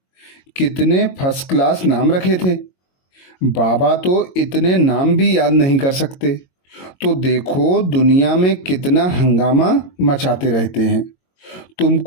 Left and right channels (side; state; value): right; late; 22 ms